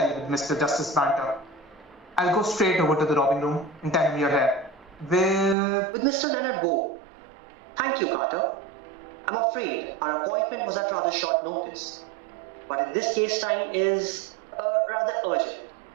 with Mr. Justice Banter. I'll go straight over to the robbing room and tell him you're here. With Mr. Leonard Bow. Thank you, Carter. I'm afraid our appointment was at rather short notice, but in this case time is rather urgent.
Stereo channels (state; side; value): drops out; left; at 5.6 s